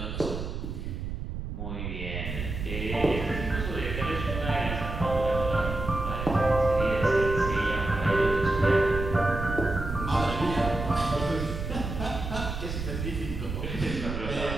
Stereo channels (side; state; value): right; noise; rumble, 5 dB below the sound